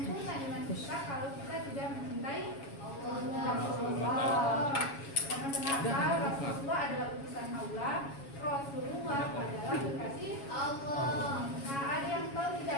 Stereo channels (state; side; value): late; right; 7.2 ms